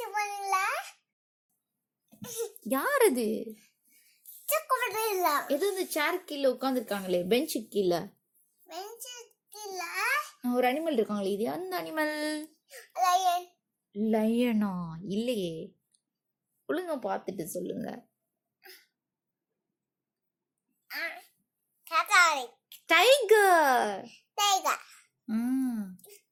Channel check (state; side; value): identical; both; correlation 1.00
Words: போனீங்களா? யார் அது? இல்ல. ஏதோ இந்த சேர் கீழே உட்காந்துருக்காங்களே, பெஞ்சு கீழே. பெஞ்சு கீழே ஒரு அனிமல் இருக்காங்களே, இது அந்த அனிமல்? லயன். லயனா? இல்லையே. ஒழுங்கா பார்த்துட்டு சொல்லுங்க. டைகர். டைகர்.